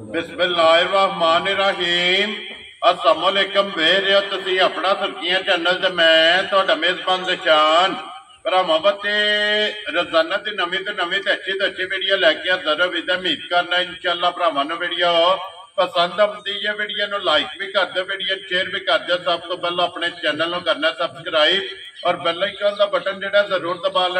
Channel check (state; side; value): identical; both; correlation 1.00